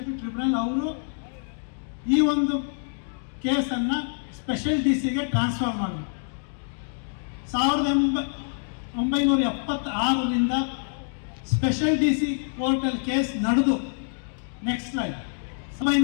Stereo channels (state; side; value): silent; right; digital silence